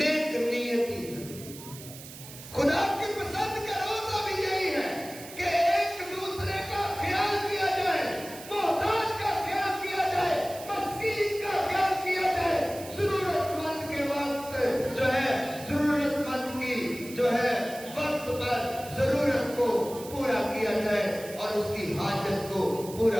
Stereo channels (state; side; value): noise; right; hiss, 15 dB below the sound